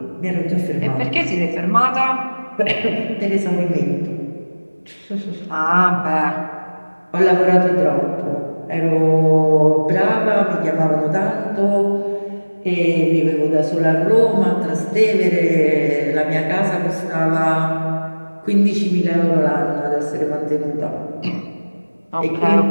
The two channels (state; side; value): inverted; both; correlation -1.00